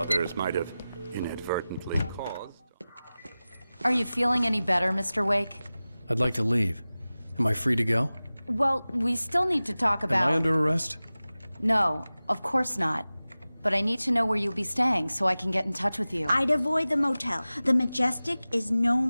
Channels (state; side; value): inverted; both; correlation -0.97